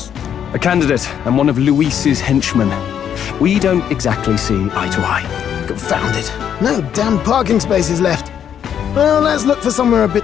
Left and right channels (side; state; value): right; quieter; 8.9 dB